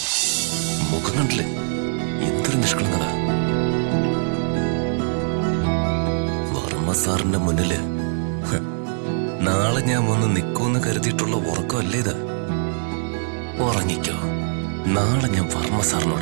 മുഖം കണ്ടില്ലേ, എന്തൊരു നിഷ്കളങ്കത. വർമ്മ സാറിന്റെ മുന്നില് നാളെ ഞാൻ വന്ന് നിൽക്കുമെന്ന് കരുതിയിട്ടുള്ള ഉറക്കമല്ലേ ഇത്? ഉറങ്ങിക്കോ. നാളെ ഞാൻ വർമ്മ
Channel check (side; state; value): left; silent; digital silence